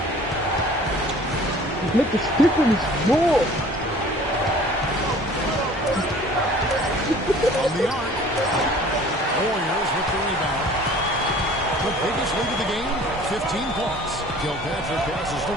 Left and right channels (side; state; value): both; normal; correlation 0.49